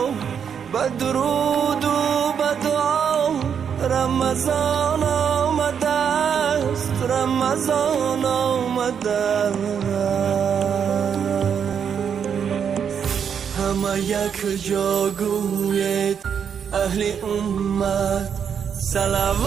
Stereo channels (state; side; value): quieter; left; 7.5 dB